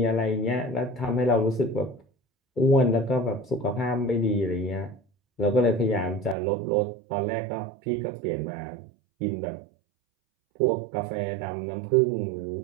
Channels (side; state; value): left; drops out; at 6.4 s